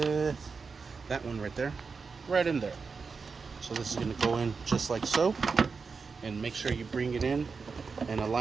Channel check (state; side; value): quieter; left; 4.9 dB